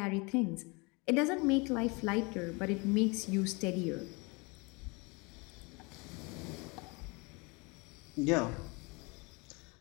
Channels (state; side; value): quieter; right; 28.4 dB